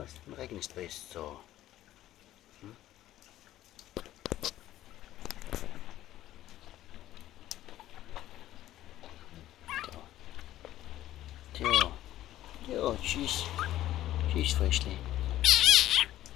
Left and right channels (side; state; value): right; quieter; 13.8 dB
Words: im Regen ist best. So. Jo, tschüss. Tschüss, Fröschli.